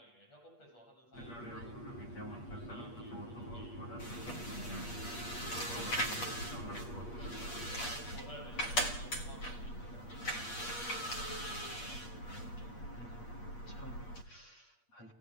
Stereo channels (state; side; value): late; right; 8.4 ms